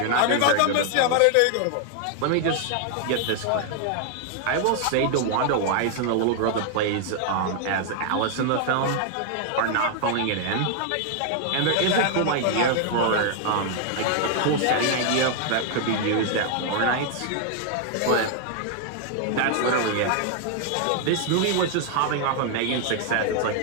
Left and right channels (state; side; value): different; both; correlation 0.00